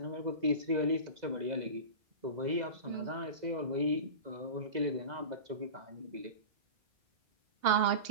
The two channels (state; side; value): late; left; 2.0 ms